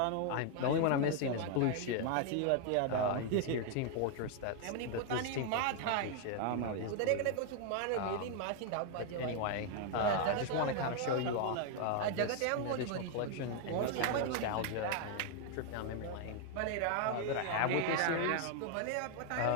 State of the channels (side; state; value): both; different; correlation 0.00